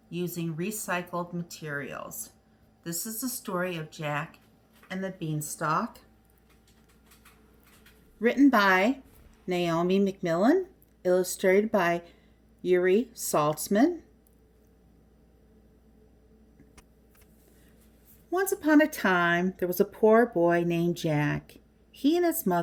using recycled materials. This is the story of Jack and the Beanstalk, written by Naomi McMillan, illustrated by Yuri Saltzman. Once upon a time, there was a poor boy named Jack. He and his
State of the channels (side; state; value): both; identical; correlation 1.00